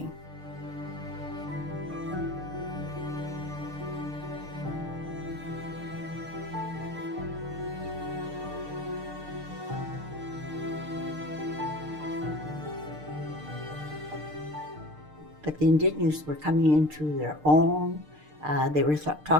But the Indigenous were coming into their own. They were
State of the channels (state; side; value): late; left; 6.6 ms